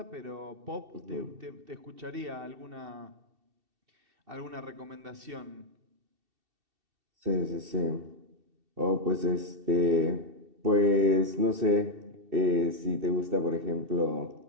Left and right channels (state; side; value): late; left; 2.7 ms